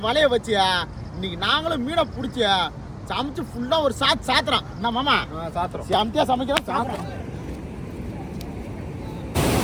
வலைய வச்சு இன்னைக்கு நாங்களும் மீனை பிடிச்சி சமைச்சு ஃபுல்லா ஒரு சாத்துறோம். என்ன மாமா சாத்துறோம், செமத்தியா சமைக்கிறோம் சாத்துறோம்.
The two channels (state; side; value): identical; both; correlation 1.00